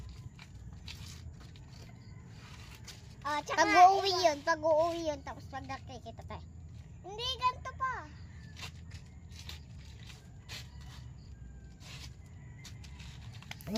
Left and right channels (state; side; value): identical; both; correlation 1.00